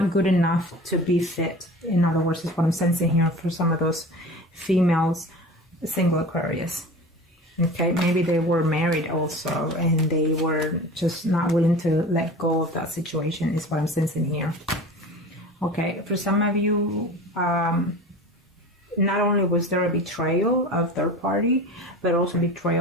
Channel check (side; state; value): both; normal; correlation 0.36